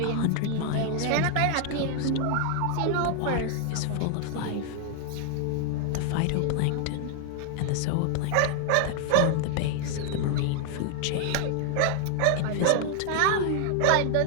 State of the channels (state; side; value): different; both; correlation 0.00